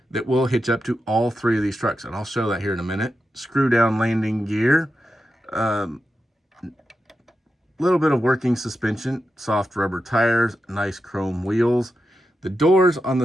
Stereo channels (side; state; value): both; normal; correlation 0.89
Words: that will hitch up to all three of these trucks, and I'll show that here in a minute. Screw down landing gear. Little bit of working suspension, soft rubber tires, nice chrome wheels. The doors on